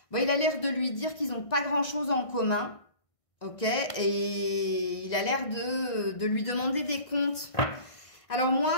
Bon, il a l'air de lui dire qu'ils n'ont pas grand-chose en commun. Ok? Et il a l'air de lui demander des comptes. Alors moi,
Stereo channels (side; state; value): right; late; 1.6 ms